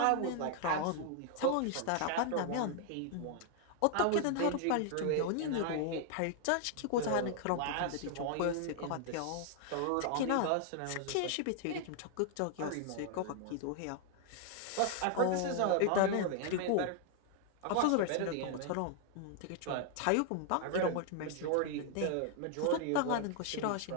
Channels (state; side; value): different; both; correlation 0.00